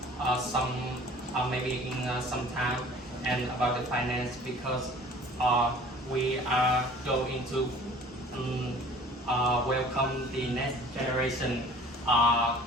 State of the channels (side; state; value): both; normal; correlation 0.48